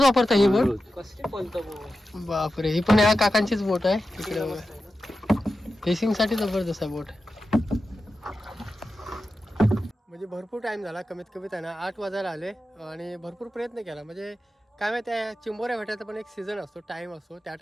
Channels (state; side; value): normal; both; correlation 0.92